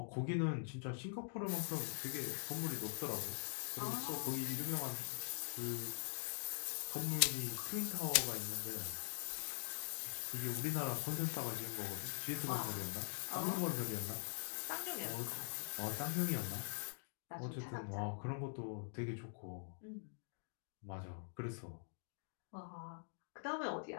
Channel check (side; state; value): right; silent; digital silence